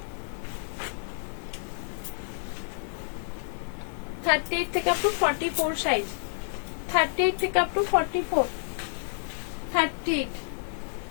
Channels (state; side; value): silent; right; digital silence